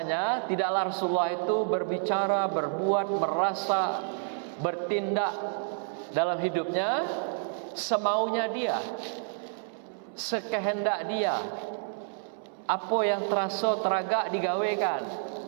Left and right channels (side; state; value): left; silent; 58 dB below the other